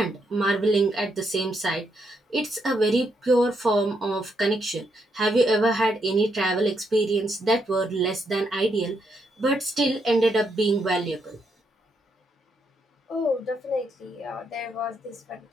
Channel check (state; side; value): normal; both; correlation 0.78